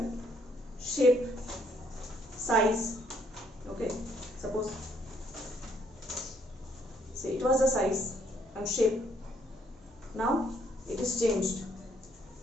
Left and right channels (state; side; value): normal; both; correlation 0.68